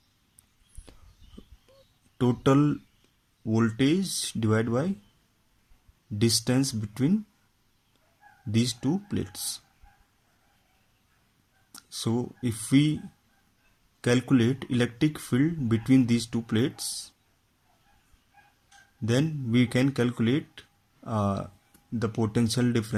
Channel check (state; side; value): identical; both; correlation 1.00